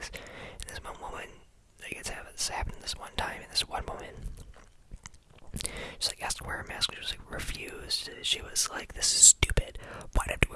And this one woman, like, it's happened this one time, and this one woman, she's like asked to wear her mask, she was like refused. She was like, this is stupid. Why do I have to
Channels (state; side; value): identical; both; correlation 1.00